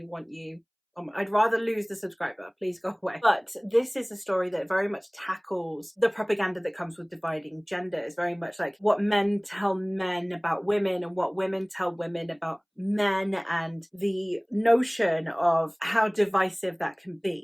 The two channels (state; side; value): identical; both; correlation 1.00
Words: want you. I'd rather lose the subscriber. Please go away. But this is a story that very much tackles the propaganda that comes with dividing gender. It's very much like what men tell men about women and what women tell women about men, and the notion of how divisive that can